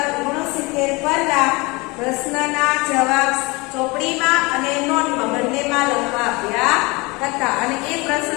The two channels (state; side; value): quieter; right; 25.3 dB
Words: 69 પરના પ્રશ્નના જવાબ ચોપડીમાં અને નોટમાં બંનેમાં લખવા આપ્યા હતા અને એ